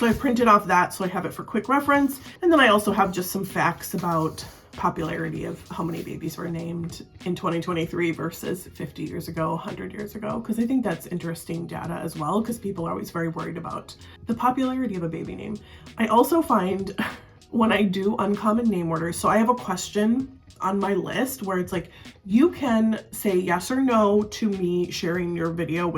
I printed off that so I have it for quick reference. And then I also have just some facts about popularity of how many babies were named in 2023 versus 50 years ago, 100 years ago, because I think that's interesting data as well, because people are always very worried about the popularity of a baby name. I also find when I do uncommon name orders, so I have a question on my list where it's like, you can say yes or no to me sharing your video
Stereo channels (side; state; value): both; identical; correlation 1.00